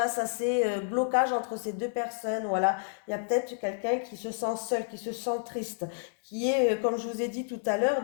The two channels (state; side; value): silent; right; digital silence